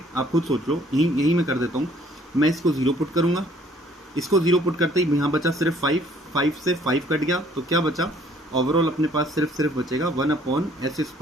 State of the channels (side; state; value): both; normal; correlation 0.60